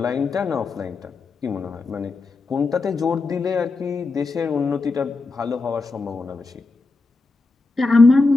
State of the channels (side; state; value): right; quieter; 3.7 dB